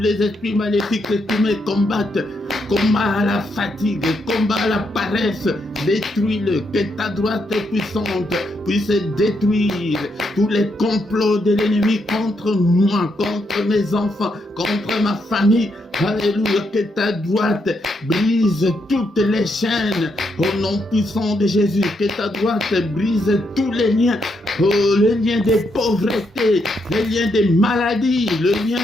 esprits maléfiques qui me combattent. Combat la fatigue. Combat la paresse. Détruis-le. Que ta droite puissante puisse détruire tous les complots de l'ennemi contre moi, contre mes enfants, contre ma famille. Alléluia, que ta droite brise toutes les chaînes au nom puissant de Jésus. Que ta droite brise tous les liens, les liens des pauvretés, les liens des maladies, les liens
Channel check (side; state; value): both; normal; correlation 0.79